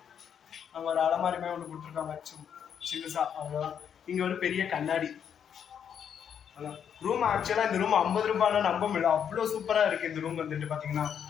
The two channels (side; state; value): right; quieter; 8.2 dB